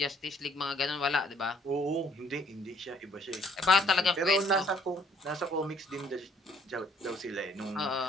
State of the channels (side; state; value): both; normal; correlation 0.63